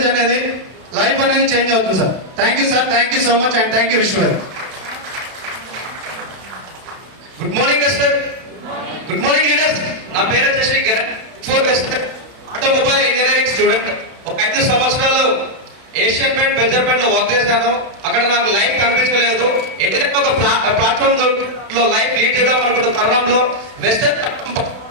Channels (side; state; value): left; late; 31 ms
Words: అనేది లైఫ్ అనేది చేంజ్ అవుతుంది sir. Thank you sir, thank you so much and thank you Vishwa. Good morning Vestige. Good morning leaders. నా పేరు వచ్చేసి ఫోర్ వెస్టర్, ఆటోమొబైల్ ఇంజనీరింగ్ స్టూడెంట్. ఒక 5 సంవత్సరాలు ఏషియన్ పెయింట్, బెజర్ పెయింట్ లో వర్క్ చేశాను. అక్కడ నాకు లైఫ్ కనిపించలేదు. ఎక్కడైనా ఒక ప్లాట్ఫామ్ లో లైఫ్ లీడ్ చేద్దాం అనుకున్న తరుణంలో వెస్టర్